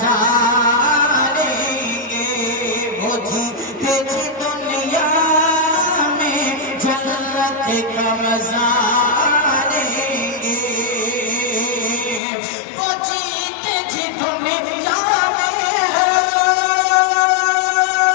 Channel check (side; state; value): right; drops out; at 12.2 s